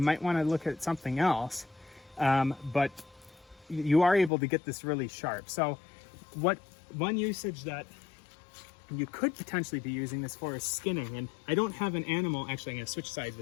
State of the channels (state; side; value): drops out; right; at 4.3 s